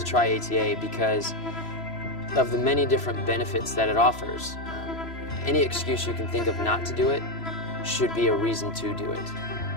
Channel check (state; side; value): late; right; 3.0 ms